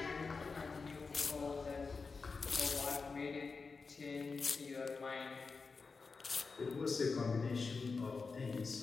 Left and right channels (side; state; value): right; quieter; 4.6 dB